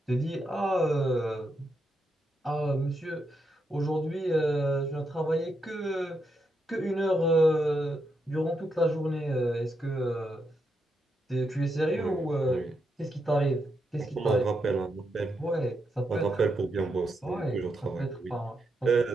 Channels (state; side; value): normal; both; correlation 0.82